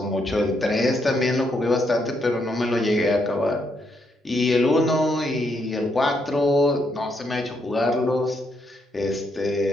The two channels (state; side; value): normal; both; correlation 0.77